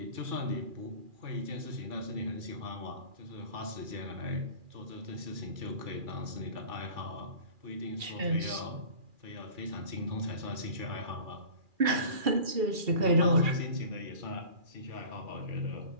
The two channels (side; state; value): left; late; 2.4 ms